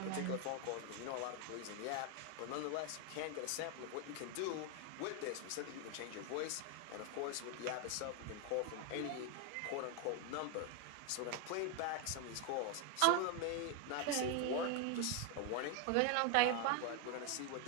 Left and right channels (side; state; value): both; different; correlation 0.01